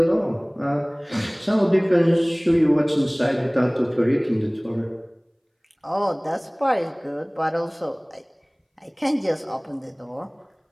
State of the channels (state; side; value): identical; both; correlation 1.00